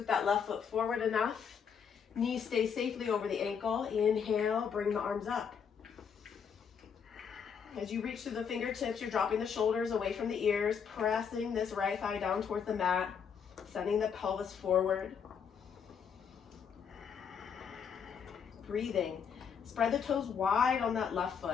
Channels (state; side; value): quieter; right; 6.9 dB